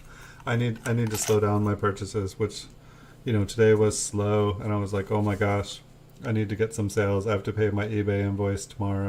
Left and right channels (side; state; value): both; identical; correlation 1.00